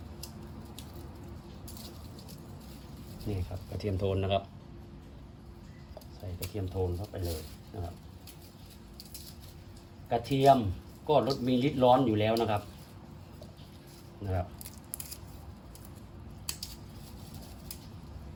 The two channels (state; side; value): identical; both; correlation 1.00